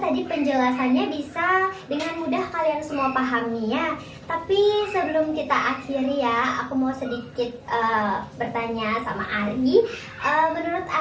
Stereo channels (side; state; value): both; identical; correlation 1.00